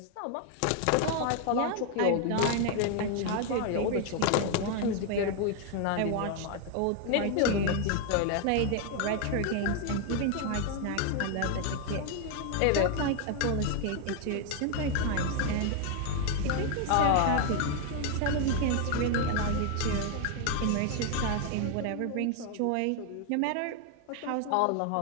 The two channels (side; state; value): both; different; correlation 0.00